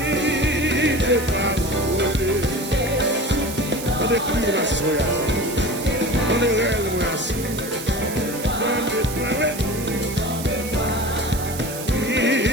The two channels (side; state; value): right; noise; hiss, 10 dB below the sound